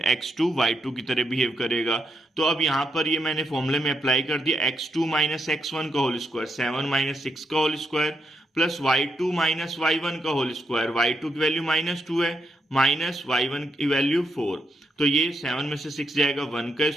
x2 y2 की तरह बिहेव करेगा। तो अब यहाँ पर ये मैंने फॉर्मूले में अप्लाई कर दिया, x2 माइनस x1 का होल स्क्वायर 7 माइनस 6 का whole square plus y2 minus y1 का होल स्क्वायर, y2 की वैल्यू -2 है, माइनस y1 की वैल्यू 4। तो ये 7 में से 6 जाएगा 1 का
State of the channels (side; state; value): both; normal; correlation 0.81